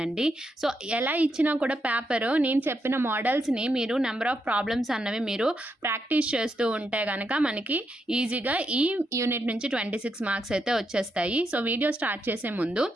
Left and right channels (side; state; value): both; normal; correlation 0.81